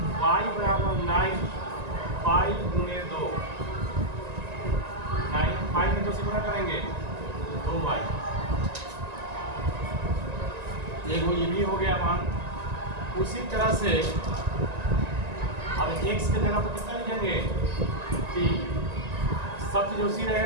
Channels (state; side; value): late; left; 1.9 ms